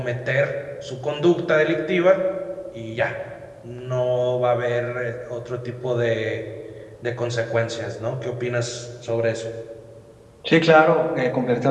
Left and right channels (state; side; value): identical; both; correlation 1.00